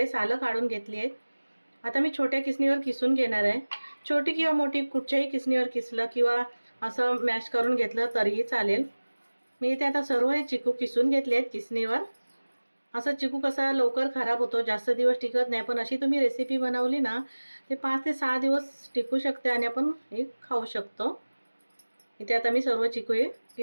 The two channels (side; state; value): both; inverted; correlation -1.00